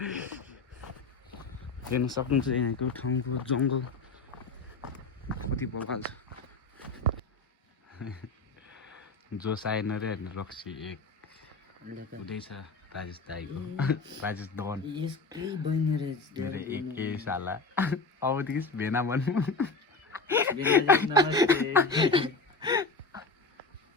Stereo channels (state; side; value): quieter; right; 3.7 dB